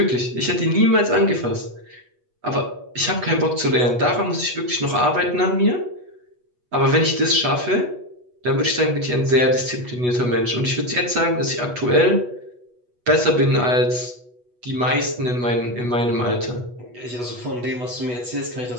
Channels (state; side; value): late; left; 8.2 ms